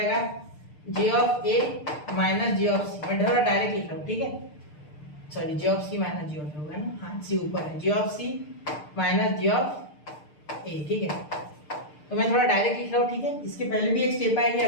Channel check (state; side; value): late; right; 6.7 ms